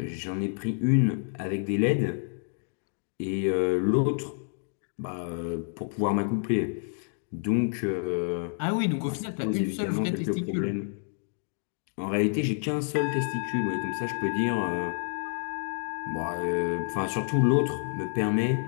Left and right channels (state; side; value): silent; right; 58 dB below the other